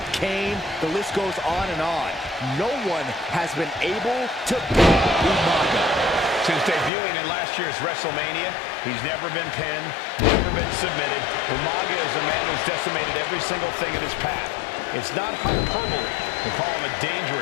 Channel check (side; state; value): right; drops out; at 6.9 s